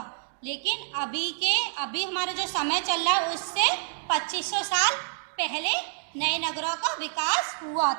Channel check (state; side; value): silent; left; digital silence